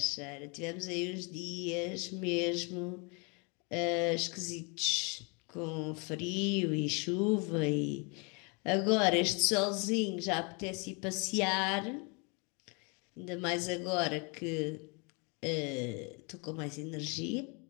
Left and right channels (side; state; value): right; quieter; 32.7 dB